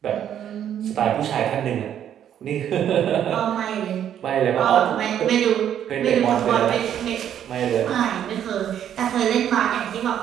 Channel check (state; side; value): quieter; left; 9.9 dB